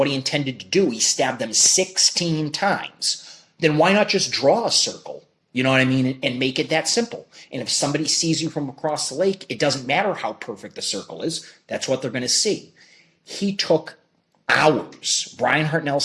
he intended to do, he stabbed them 16 times, then why not just draw a circle, you know what I mean, and make it that simple? And if somebody sees you from across the lake, it doesn't matter how perfect the circle is, that's what they're going to see. He took hours. Brian Hartnell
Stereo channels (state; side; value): identical; both; correlation 1.00